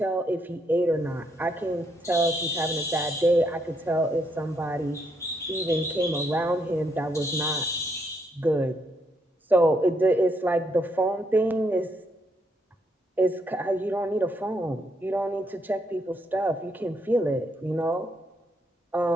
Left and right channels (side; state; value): both; normal; correlation 0.75